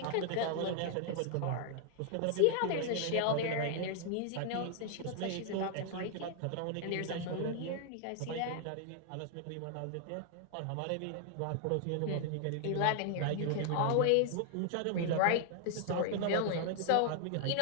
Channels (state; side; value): different; both; correlation 0.00